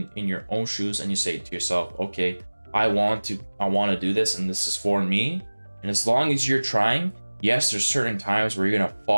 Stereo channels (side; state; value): both; inverted; correlation -1.00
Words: your own shoes and you say to yourself, okay, I want to do this, and this is for me. And as long as you're trying, yes, there's certain times where you're gonna